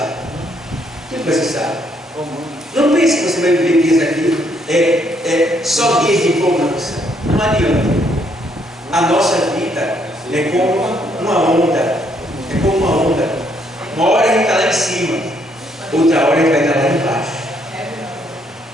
Tudo vai cessar. Não pense que você vai viver dias aqui, só dias de empolgância. Não adianta. A nossa vida é como uma onda. É como uma onda. Uma hora a gente está lá em cima, outra hora a gente vai estar lá embaixo.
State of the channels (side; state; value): both; normal; correlation 0.71